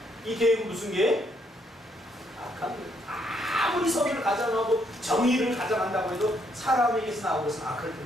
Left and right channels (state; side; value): normal; both; correlation 0.72